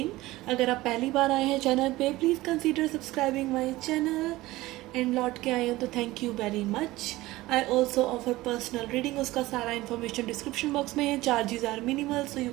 अगर आप पहली बार आए हैं चैनल पे, please consider subscribing my channel. And लौट के आए हो तो thank you very much. I also offer personal reading, उसका सारा इन्फॉर्मेशन डिस्क्रिप्शन बॉक्स में है। Charges are minimal, so you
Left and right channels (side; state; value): left; quieter; 18.3 dB